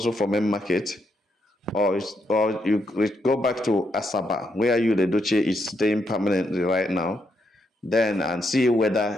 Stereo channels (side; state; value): both; normal; correlation 0.79